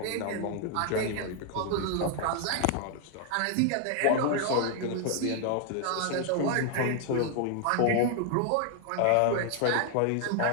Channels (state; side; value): different; both; correlation 0.00